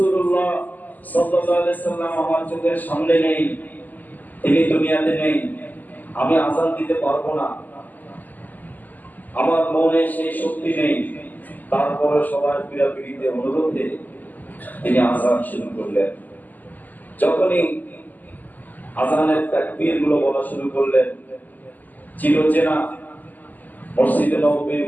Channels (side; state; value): right; late; 0.083 ms